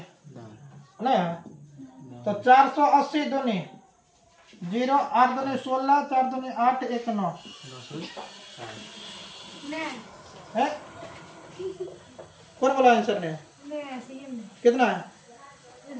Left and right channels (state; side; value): identical; both; correlation 1.00